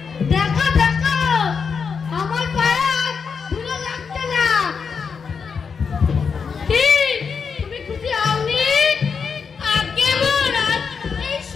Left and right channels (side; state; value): right; quieter; 5.9 dB